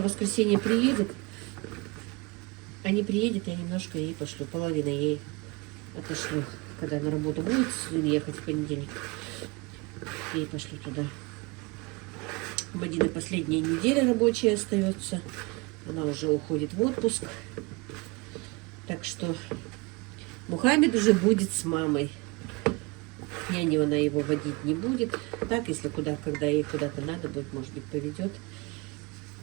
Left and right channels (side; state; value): left; quieter; 26.6 dB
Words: в воскресенье приедет. А не приедет, я немножко ей пошлю. Половину ей отошлю. Когда на работу будет ехать в понедельник, ей пошлю туда. У Мадины последняя неделя рабочая остается. Она уже уходит в отпуск. Так что Мухаммед уже будет с мамой. Няню она его водить не будет. Так, если когда ей куда-то надо будет, может быть, поведет.